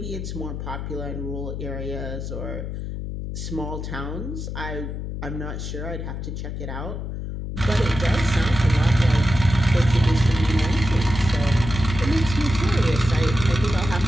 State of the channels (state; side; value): noise; left; hum, 6 dB below the sound